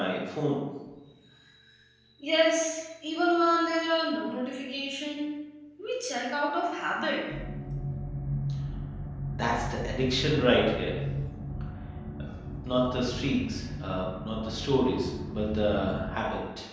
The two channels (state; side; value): identical; both; correlation 1.00